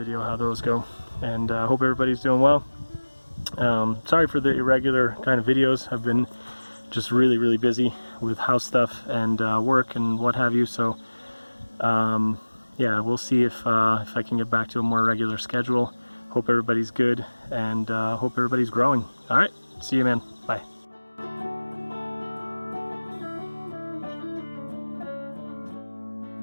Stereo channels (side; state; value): both; inverted; correlation -1.00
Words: how those go. And I hope everybody's doing well. Sorry for the irregular kind of videos. I've been just really busy with house stuff and work and what have you. So yeah, we'll see if I can get back to a more regular schedule. Hope everybody's good, and hope everybody's growing. All right, see you, man.